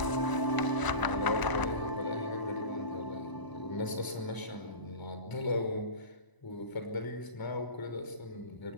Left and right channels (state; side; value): late; right; 1.0 ms